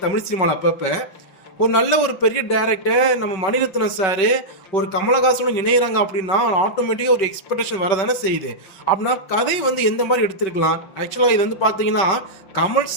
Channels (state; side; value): late; right; 5.3 ms